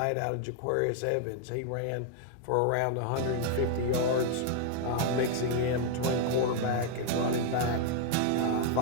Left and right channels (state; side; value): different; both; correlation 0.00